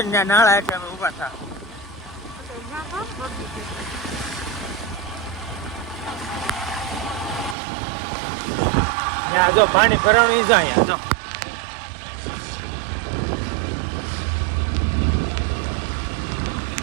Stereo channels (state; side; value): drops out; left; at 7.6 s